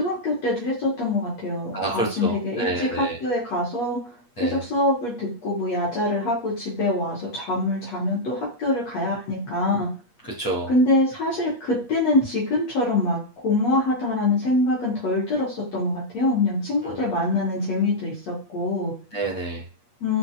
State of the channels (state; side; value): late; right; 8.4 ms